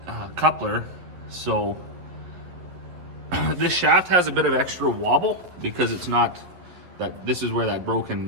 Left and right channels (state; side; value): late; left; 11 ms